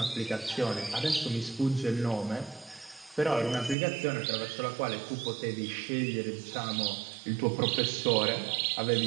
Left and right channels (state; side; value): drops out; left; at 3.8 s